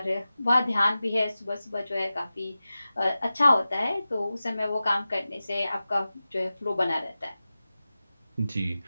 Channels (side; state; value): both; inverted; correlation -0.95